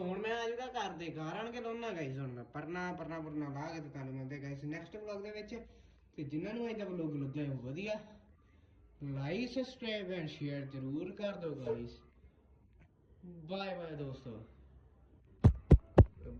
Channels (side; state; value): both; identical; correlation 1.00